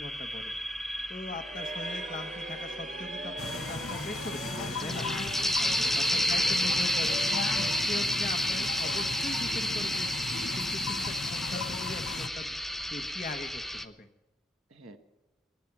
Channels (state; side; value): normal; both; correlation 0.80